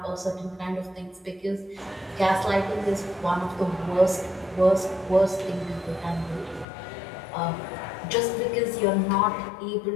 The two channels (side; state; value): right; drops out; at 6.7 s